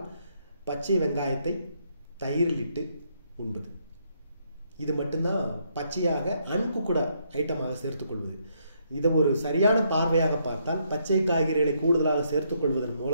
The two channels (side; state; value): both; inverted; correlation -0.74